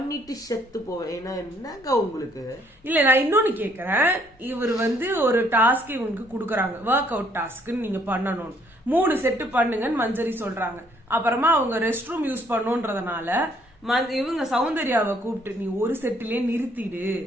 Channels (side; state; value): both; normal; correlation 0.65